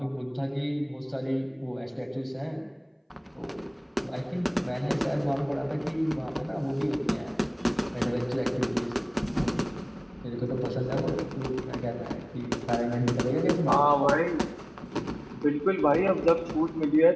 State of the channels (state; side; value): identical; both; correlation 1.00